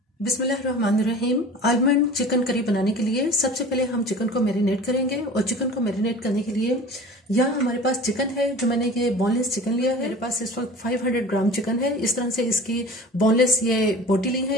बिस्मिल्लाहिर्रहमानिर्रहीम। आलमंड चिकन करी बनाने के लिए सबसे पहले हम चिकन को मैरिनेट करेंगे और चिकन को मैरिनेट करने के लिए यहाँ हमारे पास चिकन है जो मैंने ये बोनलेस चिकन लिया है। मेरे पास इस वक्त 500 ग्राम चिकन है। इस तरह से इसकी बोनलेस ये बोटी ली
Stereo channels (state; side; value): normal; both; correlation 0.39